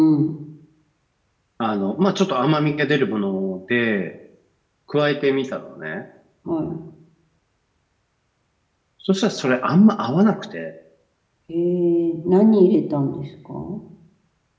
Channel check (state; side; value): identical; both; correlation 1.00